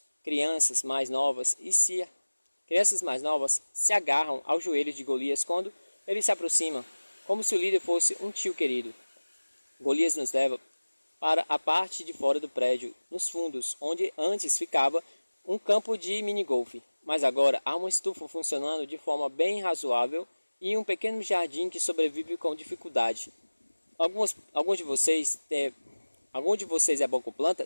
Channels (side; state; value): both; inverted; correlation -1.00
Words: Crianças mais novas se agarram aos joelhos de Golias quando ele se aproxima, como se o líder fosse um tio querido. Golias nos leva para a parte de fora do prédio, nos fundos, onde antes ficava um campo de minigolfe, mas agora há uma estufa funcionando de forma bem razoável e um pequeno jardim que sobrevive com dificuldade. Algum de vocês é bom com